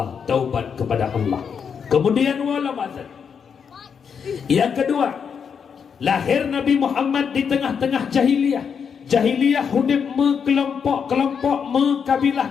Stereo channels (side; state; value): right; quieter; 6.8 dB